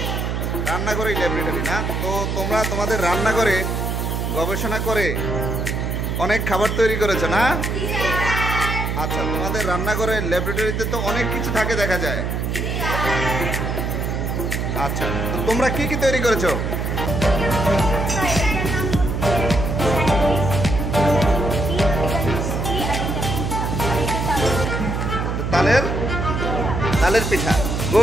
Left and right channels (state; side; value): noise; right; hum, 1 dB below the sound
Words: রান্নাঘরে ল্যাবরেটরি না? তো তোমরা তোমাদের রান্নাঘরে গবেষণা করে অনেক খাবার তৈরি করেছো না? আচ্ছা, তোমাদের রান্নাঘরে ল্যাবরেটরিতে তো অনেক কিছু থাকে দেখা যায়। আচ্ছা, তো তোমরা কি কি তৈরি করেছো? তালের পিঠা।